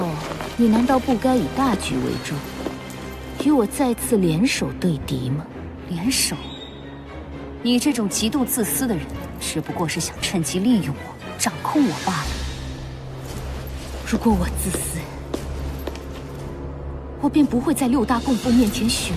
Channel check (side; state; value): both; identical; correlation 1.00